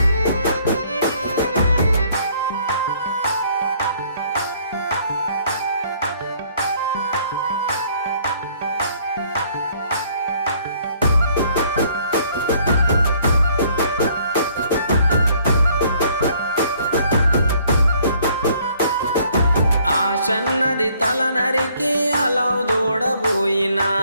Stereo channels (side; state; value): both; inverted; correlation -0.62